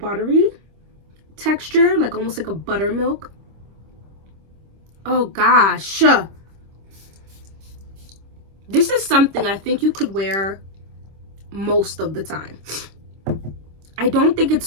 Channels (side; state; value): left; late; 26 ms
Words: texture, like almost like a buttermilk. Oh gosh. This is something I think you could wear most of the time. I don't think